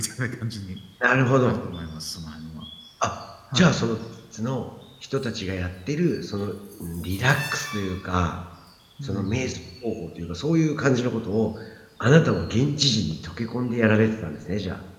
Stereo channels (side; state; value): both; identical; correlation 1.00